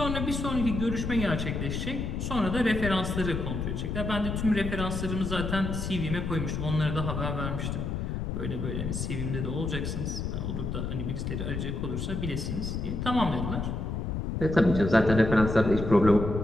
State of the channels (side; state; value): left; noise; rumble, 3 dB below the sound